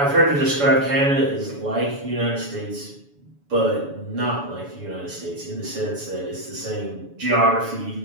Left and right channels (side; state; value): left; late; 7.0 ms